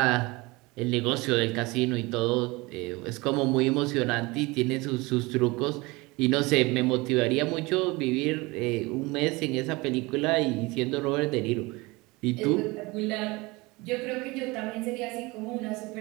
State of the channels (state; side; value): quieter; left; 23.6 dB